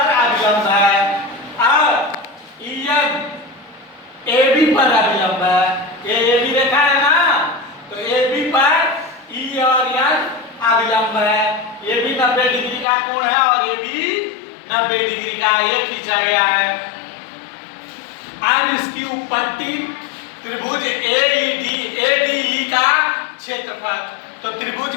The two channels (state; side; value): drops out; right; at 12.9 s